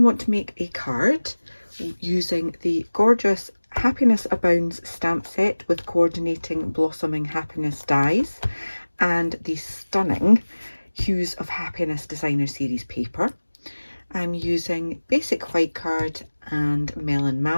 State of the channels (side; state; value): both; inverted; correlation -1.00